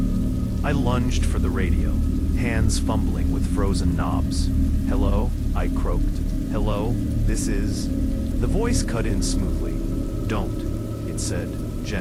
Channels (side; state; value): both; identical; correlation 1.00